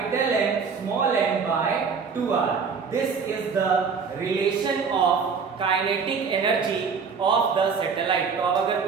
M small m by 2r। This is the relation of kinetic energy of the satellite. तो अब अगर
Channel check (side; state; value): left; quieter; 5.6 dB